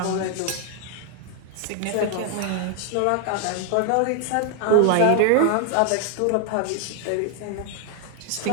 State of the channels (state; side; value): different; both; correlation 0.00